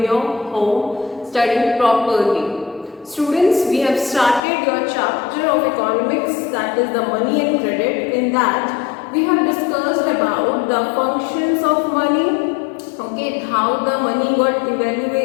your home, studying properly. Students, we have started your chapter of economics, that is the money and credit. In that, we have discussed about the functions of money, okay, how the money got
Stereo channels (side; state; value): right; drops out; at 4.4 s